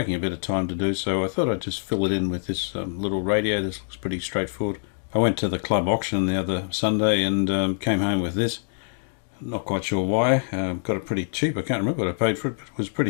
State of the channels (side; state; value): right; silent; digital silence